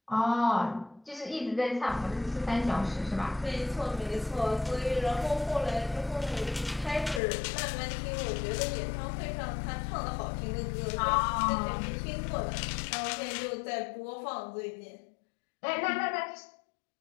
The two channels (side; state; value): right; drops out; at 7.2 s